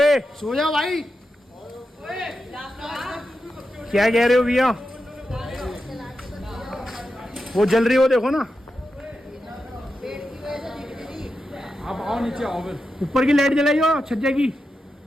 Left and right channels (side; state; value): both; normal; correlation 0.89